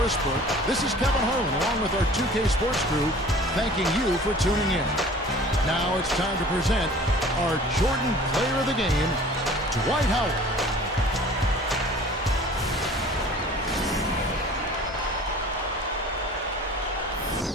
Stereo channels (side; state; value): both; normal; correlation 0.46